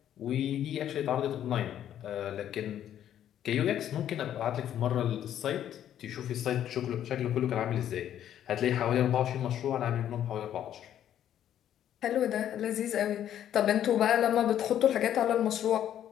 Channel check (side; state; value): right; quieter; 10.7 dB